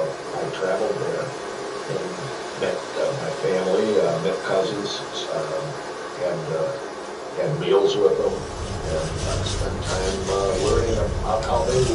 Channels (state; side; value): identical; both; correlation 1.00